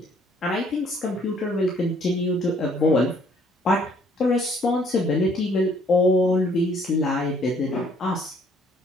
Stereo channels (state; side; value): normal; both; correlation 0.63